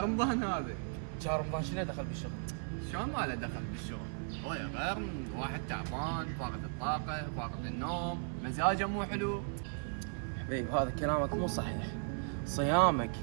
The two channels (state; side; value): silent; left; 54 dB below the other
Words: رمضان هذا. شهر رمضان شنو دخل بالشغل؟ شلون ما له دخل بالشغل؟ هو يا غير من واحد تعبان، فاقد الطاقه، فاقد النوم، مزاجه مو حلو. حبيب هذا كلامك مو صحيح. صيامك